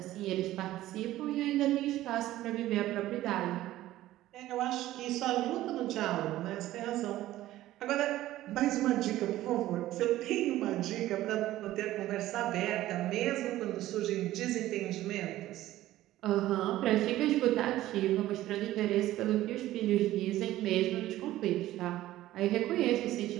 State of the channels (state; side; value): quieter; left; 15.0 dB